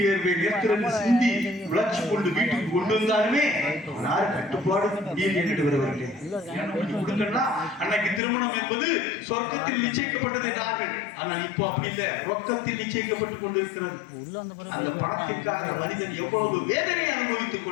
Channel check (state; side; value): drops out; right; at 8.2 s